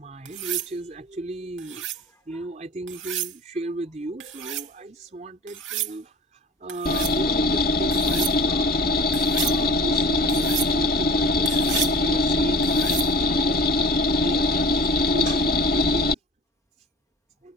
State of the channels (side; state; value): both; normal; correlation 0.39